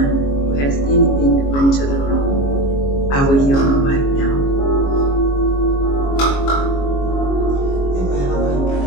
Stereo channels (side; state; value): right; late; 22 ms